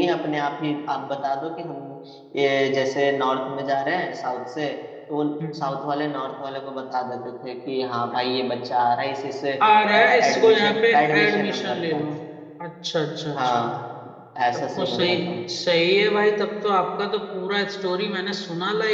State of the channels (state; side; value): identical; both; correlation 1.00